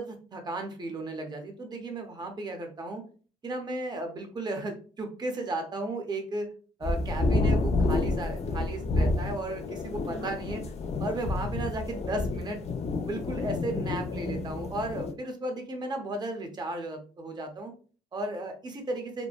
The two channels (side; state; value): both; normal; correlation 0.68